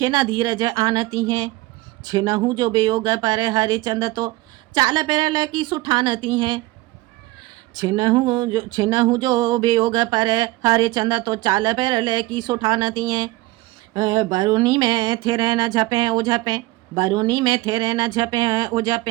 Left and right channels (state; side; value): quieter; left; 19.6 dB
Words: न धीरज आनती हैं। छिनहु जो वियोग पर हरिचंद तो चाल पेरल की सुठानती हैं। छिनहु जो वियोग पर हरिचंद तो चाल पेरल की सुठानती हैं। बरूनी में थिरे न झपे ओ झपे, बरूनी में थिरे न झपे ओ